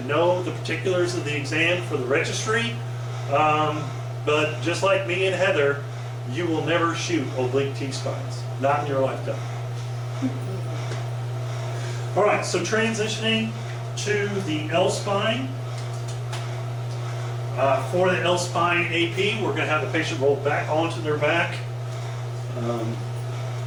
know the particulars of the exam for the registry. But just like me and Heather, you will never shoot oblique T-spines. Not in your lifetime. All right, so transitioning to the L-spine. For the L-spine AP, we're going to have the patient roll back onto their back.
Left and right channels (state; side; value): identical; both; correlation 1.00